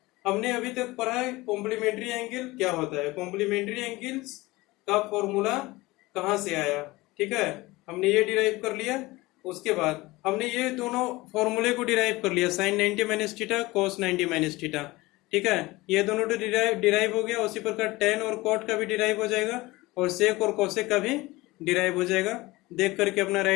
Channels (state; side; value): quieter; right; 20.7 dB